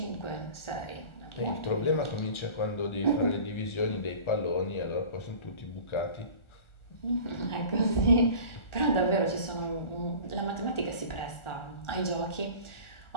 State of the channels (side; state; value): right; late; 1.4 ms